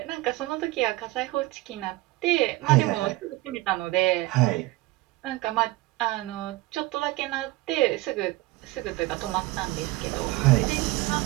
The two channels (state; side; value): quieter; left; 19.7 dB